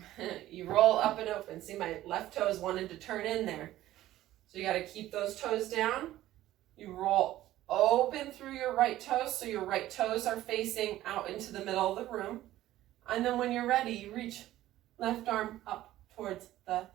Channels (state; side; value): quieter; left; 14.6 dB